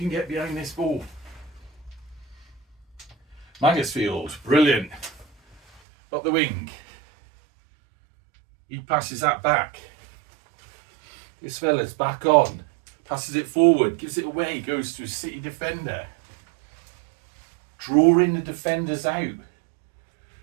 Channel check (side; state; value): left; drops out; at 5.8 s